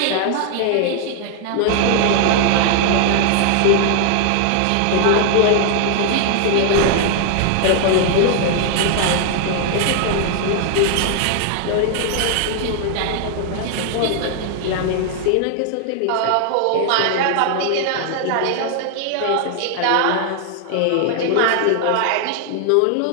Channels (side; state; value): both; different; correlation 0.00